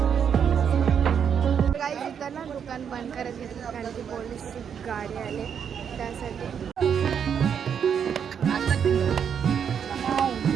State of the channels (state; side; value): quieter; left; 7.7 dB